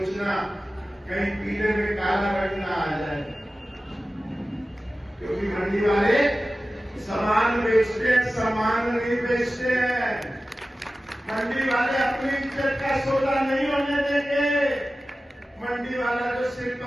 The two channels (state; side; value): normal; both; correlation 0.95